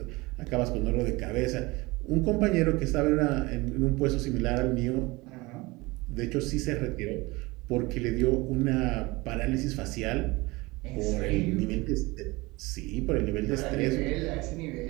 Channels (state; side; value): quieter; left; 22.9 dB